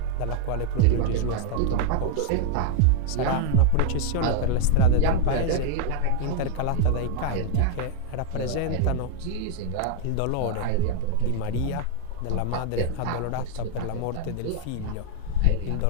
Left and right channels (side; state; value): both; different; correlation 0.00